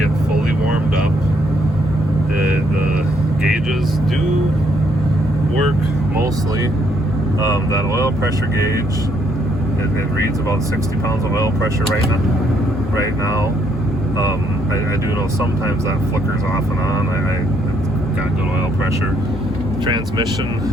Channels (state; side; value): normal; both; correlation 0.71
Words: fully warmed up. The gauges do work mostly. That oil pressure gauge, it reads about 60 pounds of oil pressure right now. I do know sometimes that flickers off and on. It's got good oil pressure. Transmission